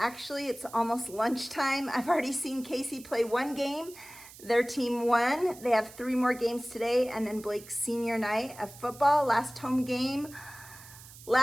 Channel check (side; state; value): right; noise; hiss, 18 dB below the sound